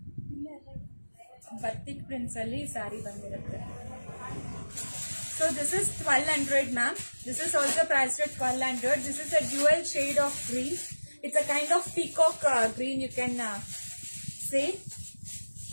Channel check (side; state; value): both; inverted; correlation -1.00